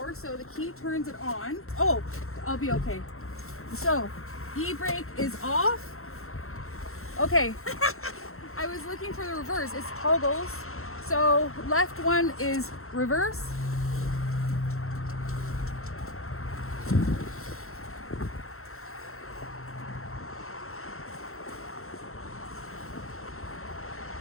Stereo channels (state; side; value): late; right; 0.62 ms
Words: so the key turns it on. Oh, I'll be okay. So, e-brake is off. Okay, I was looking for the reverse. It's toggles. So left one is reverse.